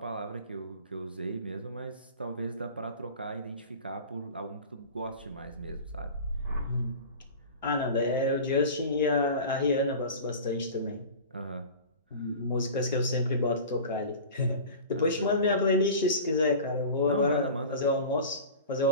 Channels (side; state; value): both; inverted; correlation -0.36